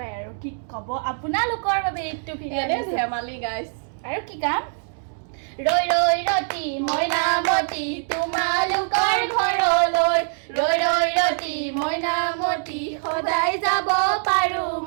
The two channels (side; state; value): left; silent; digital silence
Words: আৰু কি ক'ব আপোনালোকৰ বাবে এইটো এনে ভিডিঅ' ধেমালি গাইজ আৰু কি কাম ৰৈ ৰৈ ৰতি মইনামতি তোমালোকৰ ঘৰলৈ ৰৈ ৰৈ ৰতি মইনামতি সদায় যাব পাৰো